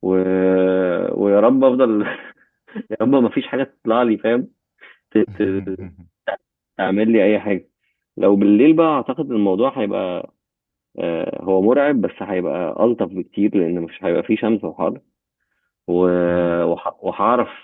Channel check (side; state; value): both; identical; correlation 1.00